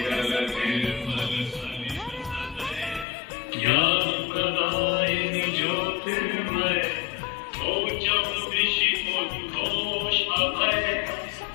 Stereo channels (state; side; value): drops out; right; at 3.1 s